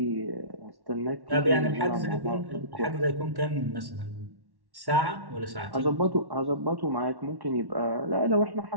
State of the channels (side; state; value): left; late; 1.1 ms